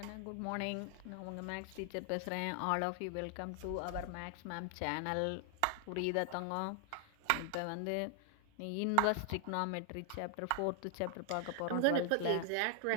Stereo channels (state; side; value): different; both; correlation 0.00